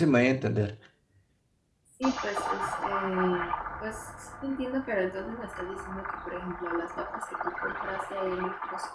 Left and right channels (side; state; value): both; identical; correlation 1.00